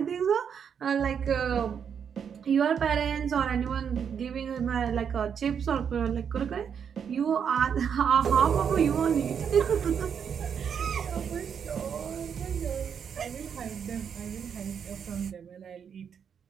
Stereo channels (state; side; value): quieter; left; 7.5 dB